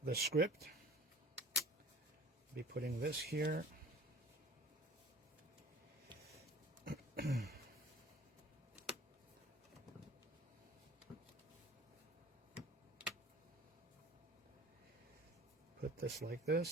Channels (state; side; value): normal; both; correlation 0.45